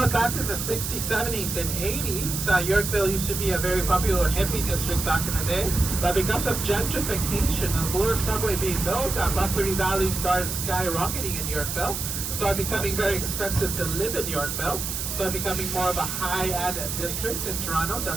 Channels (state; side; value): noise; right; hiss, 4 dB below the sound